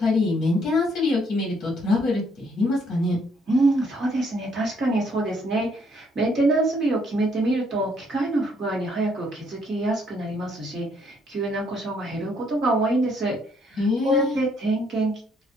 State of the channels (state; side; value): normal; both; correlation 0.68